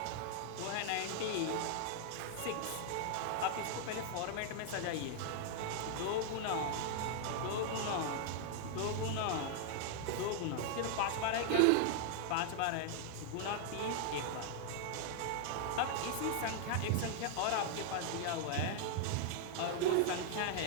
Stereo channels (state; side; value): different; both; correlation 0.00